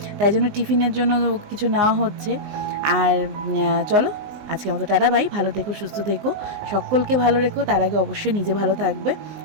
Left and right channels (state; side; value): late; left; 20 ms